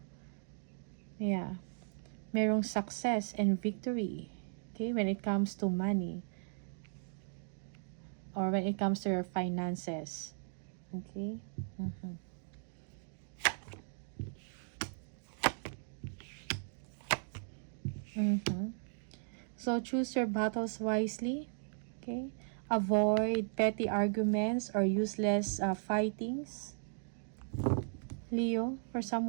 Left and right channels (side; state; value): left; silent; digital silence